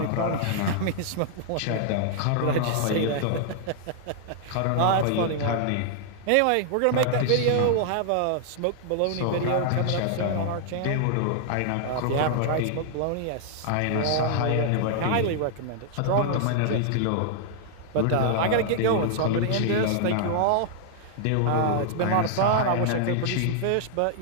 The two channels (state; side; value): different; both; correlation -0.01